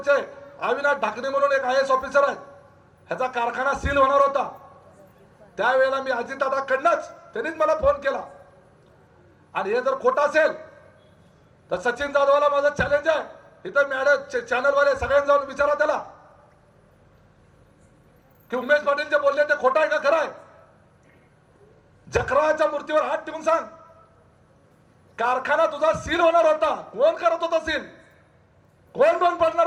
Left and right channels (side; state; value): both; identical; correlation 1.00